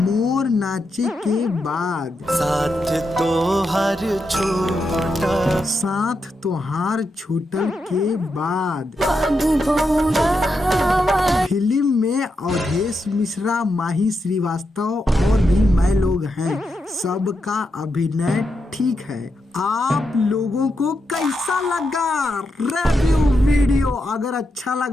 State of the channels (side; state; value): both; normal; correlation 0.85